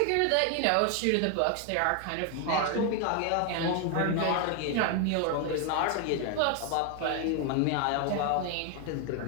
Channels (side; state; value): both; different; correlation 0.01